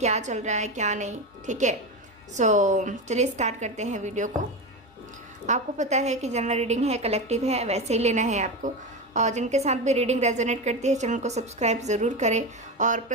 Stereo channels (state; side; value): normal; both; correlation 0.19